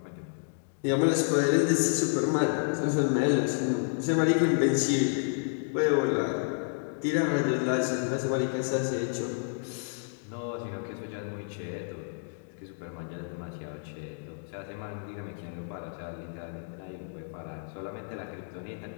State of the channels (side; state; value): right; silent; digital silence